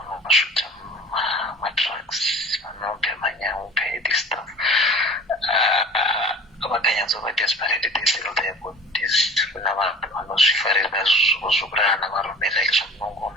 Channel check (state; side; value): normal; both; correlation 0.42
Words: madrugs vanobhe manyaupe this stuff vakanyatsova desperate they sell their bodies kuna vanhu vanozvifarira zvokurara navarume like